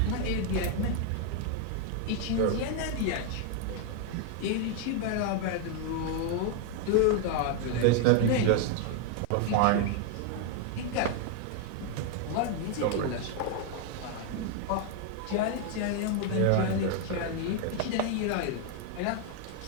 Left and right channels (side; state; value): both; different; correlation 0.00